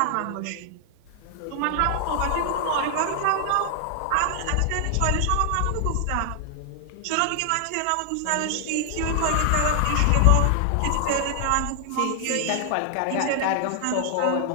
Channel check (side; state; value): both; different; correlation 0.00